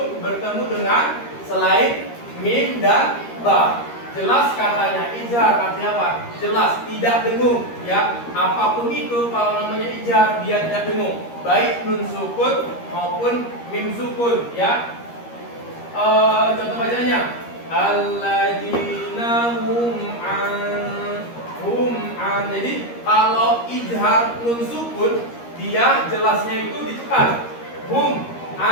bertemu dengan selain mim dan ba. Jelas katanya, izhar artinya apa? Jelas, tidak dengung ya. Apapun itu kalau namanya izhar dia tidak dengung, baik nun sukun maupun mim sukun ya. Contoh bacanya, alladzina hum an. Jadi kalau izhar nun sukun dia jelasnya itu ditekan, hum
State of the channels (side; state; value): right; late; 13 ms